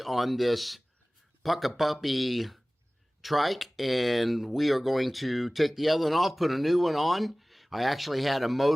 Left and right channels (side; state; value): both; normal; correlation 0.98